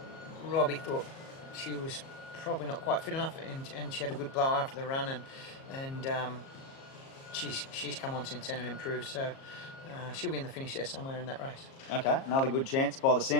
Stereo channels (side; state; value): right; late; 37 ms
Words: Robbie thought she was probably not quite fit enough, and she had a good blow after the run, and she's come on since then and improved. So she'll be in the finish there somewhere in that race. Okay, another good chance by the